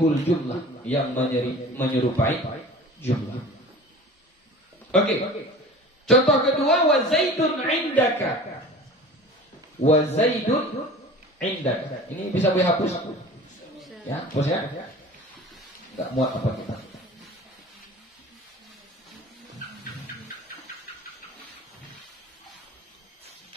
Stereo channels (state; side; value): normal; both; correlation 0.40